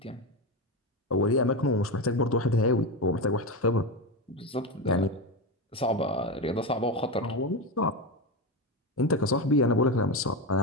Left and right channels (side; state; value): both; normal; correlation 0.15